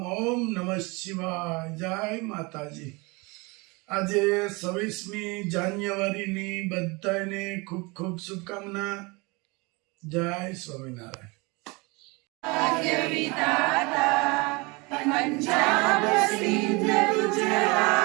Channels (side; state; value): left; quieter; 26.7 dB